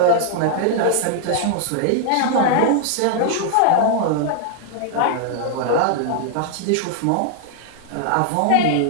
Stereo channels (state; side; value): different; both; correlation -0.01